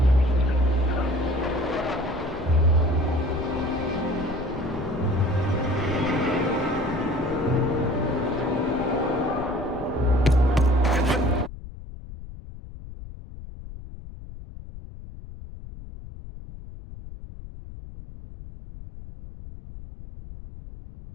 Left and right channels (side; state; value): left; noise; rumble, 13 dB below the sound